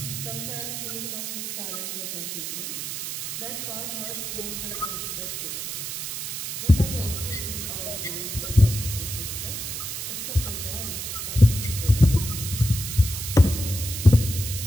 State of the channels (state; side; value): noise; right; hiss, 5 dB below the sound